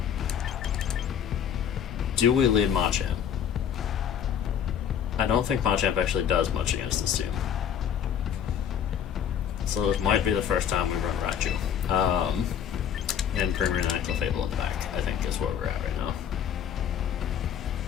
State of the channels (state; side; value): quieter; right; 8.7 dB